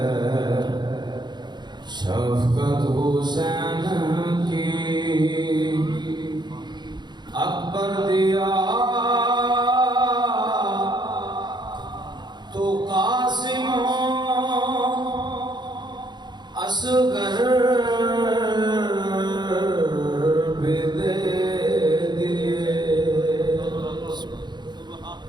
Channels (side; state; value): left; late; 0.21 ms